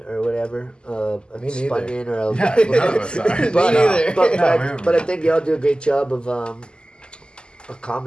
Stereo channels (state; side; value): late; right; 0.048 ms